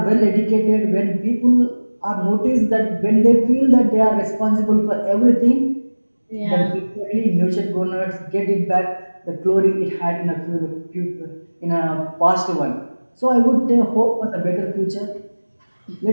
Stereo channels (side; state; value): both; inverted; correlation -1.00